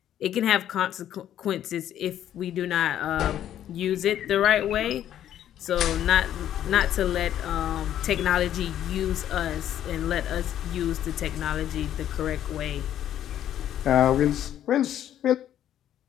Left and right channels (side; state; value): right; quieter; 11.1 dB